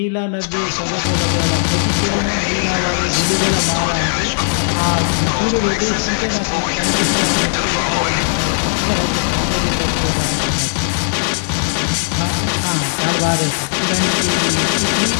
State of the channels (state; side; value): silent; right; digital silence